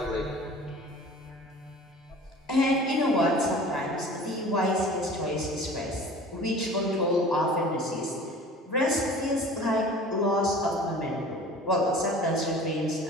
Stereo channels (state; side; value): normal; both; correlation 0.43